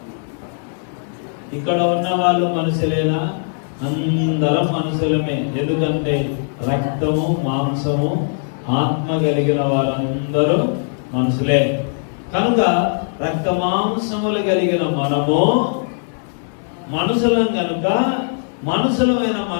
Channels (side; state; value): right; silent; digital silence